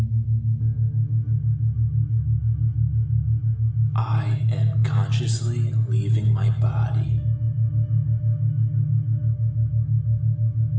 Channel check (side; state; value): both; identical; correlation 1.00